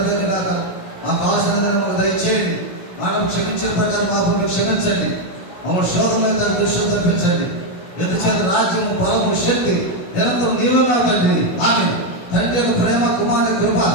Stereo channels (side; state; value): right; late; 16 ms